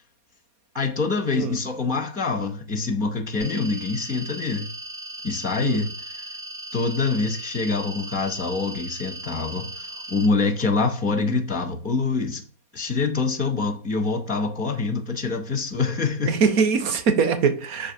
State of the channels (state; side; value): late; left; 4.2 ms